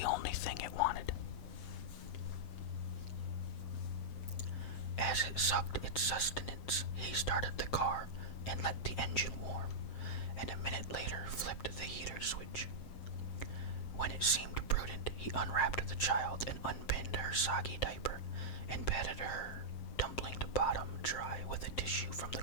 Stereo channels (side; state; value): right; late; 7.5 ms